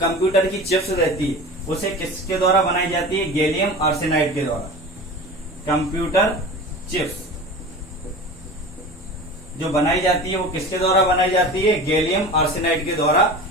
की चिप्स रहती है उसे किसके द्वारा बनाई जाती है? गैलियम आर्सेनाइड के द्वारा। कंप्यूटर चिप्स जो बनाई जाती है वो किसके द्वारा बनाई जाती है? गैलियम आर्सेनाइड के द्वारा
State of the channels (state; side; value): normal; both; correlation 0.34